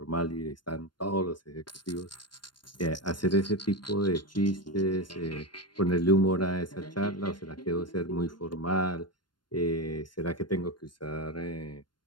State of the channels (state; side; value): late; right; 0.71 ms